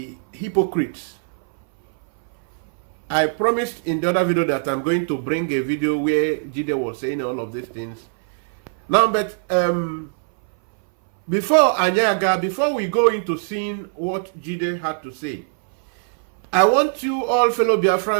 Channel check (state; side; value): silent; left; 60 dB below the other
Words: hypocrites. I promised in the other video that I'm going to bring a video where Jide was saying all of these things. Now, but before we go into seeing what Jide had to say, I want you all fellow